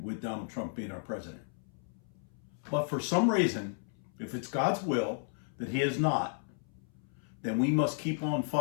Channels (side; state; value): right; silent; 55 dB below the other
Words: with Donald Trump being our president. But for some reason, if it's God's will that he is not, then we must keep on